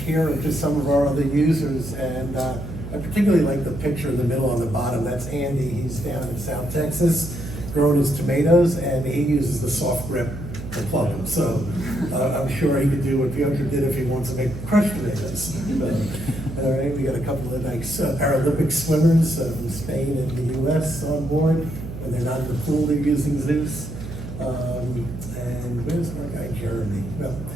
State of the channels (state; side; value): noise; right; hum, 9 dB below the sound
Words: here of just some of our other users, and I particularly like the picture in the middle on the bottom. That's Andy. He's down in South Texas, growing his tomatoes, and he uses the soft grip to plug them. So I'm sure he could do what Piotr did if he wants to make crushed tomatoes. All right, we got a couple of nice Paralympic swimmers from Spain and the US on board. When they're not in the pool, they're using Zeus. And where's our guy, Jeremy? Well,